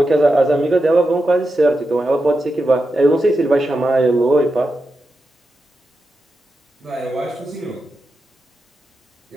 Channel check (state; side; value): normal; both; correlation 0.89